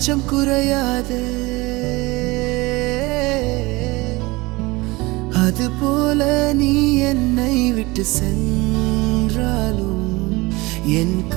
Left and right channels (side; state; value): left; quieter; 22.9 dB